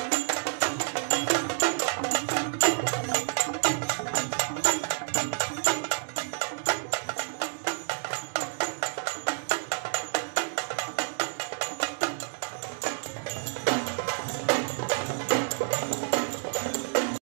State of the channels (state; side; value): silent; left; digital silence